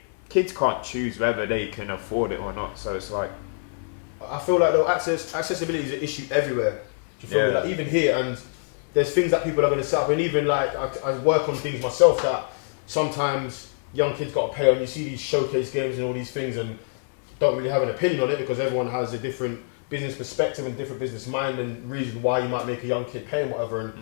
kids can't choose whether they can afford it or not. So it's like, I feel like though accessibility is an issue everywhere. Do you feel me? Like even here, and there's things that people are going to set up, and even like I work on things myself that sometimes young kids got to pay on. You see these showcase games and all these things, and don't really have an opinion on it, because everyone has a different business perspective and different business mind and reason why you might make a young kid pay and whatever. And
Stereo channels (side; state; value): right; silent; 62 dB below the other